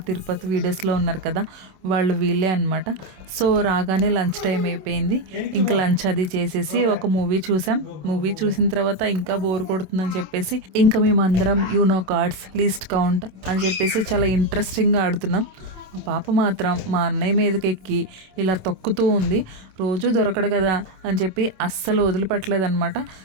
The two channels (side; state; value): left; late; 27 ms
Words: తిరుపతి వీడియోస్లో ఉన్నారు కదా, వాళ్ళు వీళ్ళే అనమాట. సో రాగానే లంచ్ టైం అయిపోయింది. ఇంకా లంచ్ అది చేసేసి ఒక మూవీ చూసాం. మూవీ చూసిన తర్వాత ఇంకా బోర్ కొడుతుందని చెప్పేసి ఇంకా మేమందరం యూనో కార్డ్స్ లీస్ట్ కౌంట్ అని చెప్పేసి చాలా ఇంట్రెస్టింగ్గా ఆడుతున్నాం. మా పాప మాత్రం మా అన్నయ్య మీదకి ఎక్కి ఇలా తొక్కుతూ ఉంది. రోజు దొరకడు కదా అని చెప్పి అస్సలు వదిలిపెట్టలేదన్నమాట.